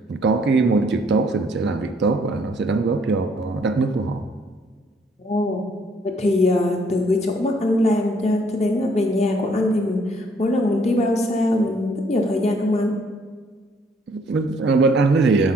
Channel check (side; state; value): both; normal; correlation 0.65